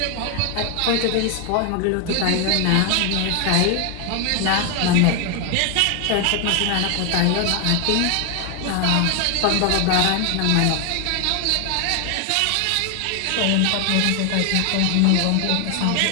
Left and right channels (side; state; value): both; different; correlation 0.01